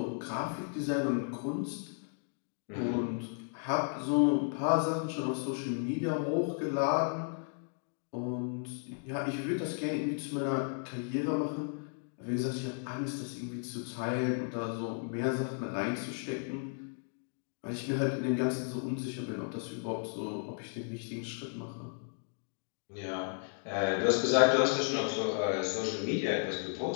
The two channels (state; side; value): silent; right; 55 dB below the other